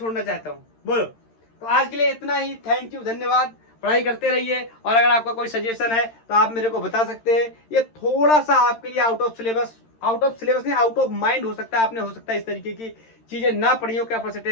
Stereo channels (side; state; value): right; late; 13 ms